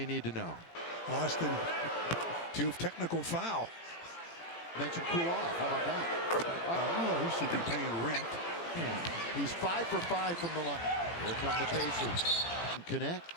need to know. Austin, 2 technical foul. Mention cool off. How about that? Oh, he should be paying rent. Yeah. He's 5 for 5 from the line. Here come the Pacers.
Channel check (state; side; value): late; right; 18 ms